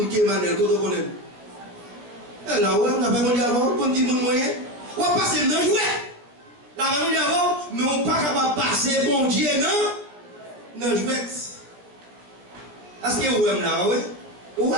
qui est Emmanuel? Quand on connaît? Et là, on a fait mon Dieu avant. On dit mon moyen. On va passer dans le jouet. La mon Dieu avant, mais on n'est pas capable de passer bon Dieu dans le jouet. Est-ce que vous aimez là, oui? Oui.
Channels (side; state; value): left; late; 17 ms